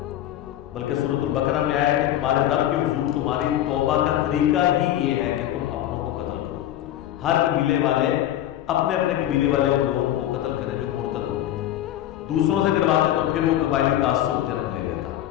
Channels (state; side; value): quieter; right; 12.6 dB